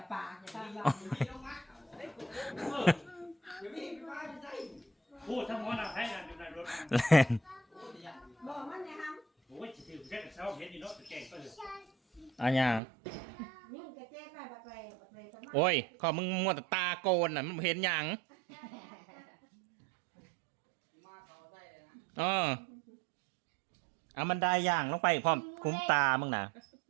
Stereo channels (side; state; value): left; drops out; at 12.8 s